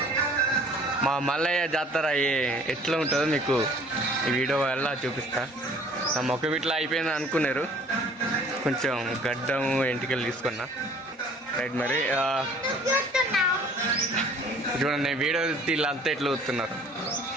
మా మల్లయ్య జాతర ఎట్లా ఉంటుందో మీకు ఈ వీడియో వల్ల చూపిస్తా. నా మొక్క ఇట్లా అయిపోయింది అనుకున్నారు, కొంచెం గడ్డం ఎంటికలు తీసుకున్నా. రైట్ మరి చూడండి, వీడియో వీళ్ళంతా ఎట్లా వస్తున్నారు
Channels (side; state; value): both; normal; correlation 0.53